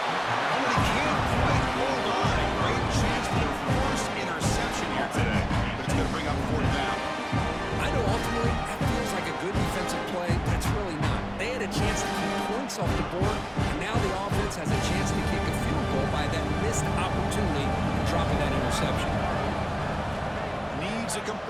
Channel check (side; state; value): both; identical; correlation 1.00